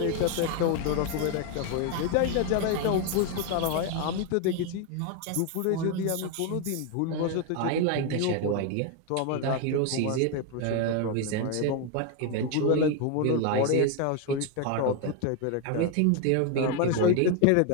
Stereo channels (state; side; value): different; both; correlation 0.01